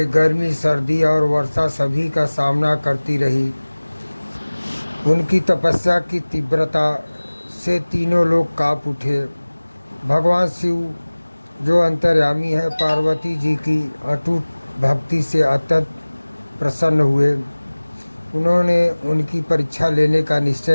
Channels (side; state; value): both; inverted; correlation -1.00